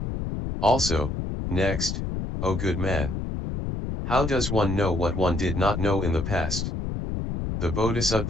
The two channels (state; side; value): noise; left; rumble, 3 dB below the sound